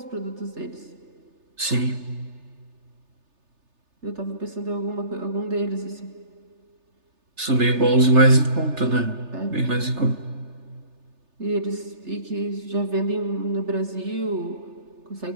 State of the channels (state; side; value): late; left; 3.3 ms